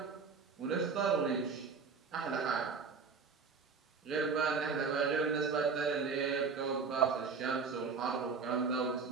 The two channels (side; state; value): left; quieter; 5.2 dB